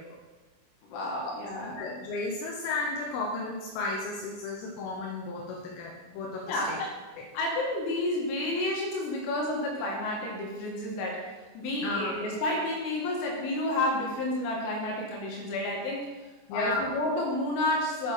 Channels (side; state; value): right; late; 24 ms